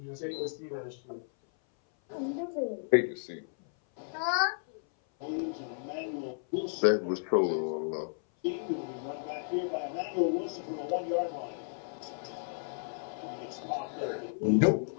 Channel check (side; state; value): right; silent; 56 dB below the other